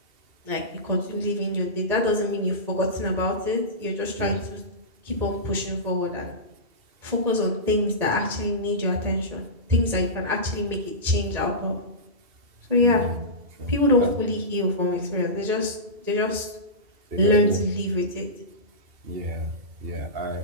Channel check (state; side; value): late; left; 1.9 ms